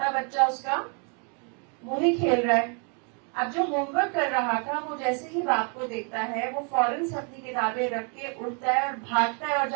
بچہ اس کا وہی کھیل رہا ہے. اب جو ہوم ورک کر رہا تھا وہ جیسے ہی باپ کو دیکھتا ہے وہ فوراً سے اپنی کتابیں رکھ کے اٹھتا ہے اور بھاگتا ہے اور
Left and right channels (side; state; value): left; quieter; 38.3 dB